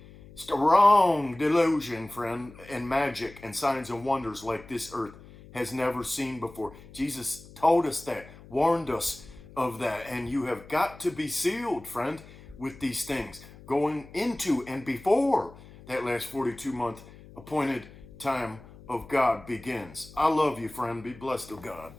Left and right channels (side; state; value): left; noise; hum, 20 dB below the sound